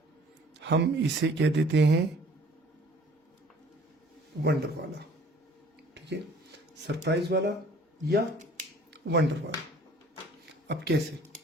हम इसे कह देते हैं वंडर वाला। ठीक है, सरप्राइज वाला या वंडर वाला। अब कैसे,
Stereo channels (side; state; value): both; normal; correlation 0.53